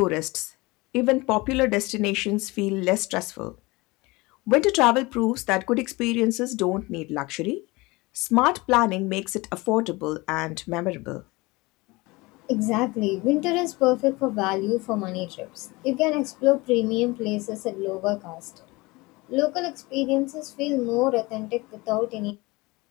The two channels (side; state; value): right; quieter; 23.2 dB